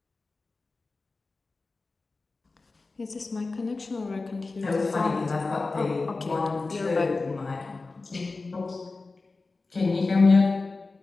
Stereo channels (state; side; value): quieter; right; 3.7 dB